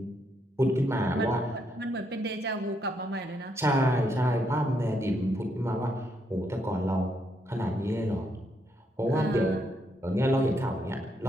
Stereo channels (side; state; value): both; normal; correlation 0.76